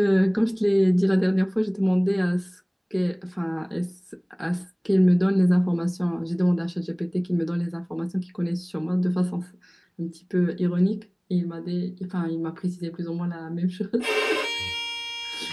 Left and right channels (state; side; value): identical; both; correlation 1.00